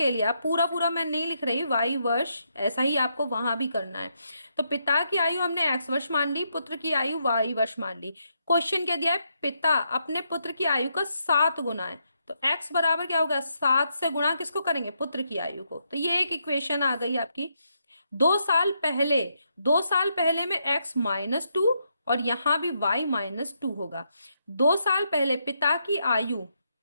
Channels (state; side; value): inverted; both; correlation -0.79